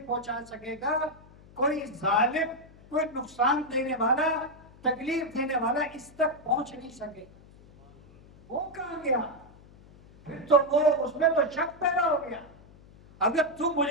پہنچا سکے گا، کوئی ظالم، کوئی نقصان دینے والا تکلیف دینے والا اس تک پہنچ نہیں سکے. وہ کہاں گیا؟ پھر تو وہ اس میں تو شک پیدا ہو گیا. اگر تو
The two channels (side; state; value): left; noise; hum, 23 dB below the sound